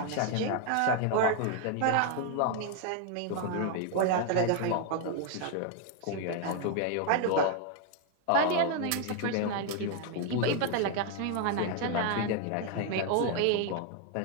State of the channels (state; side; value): different; both; correlation 0.01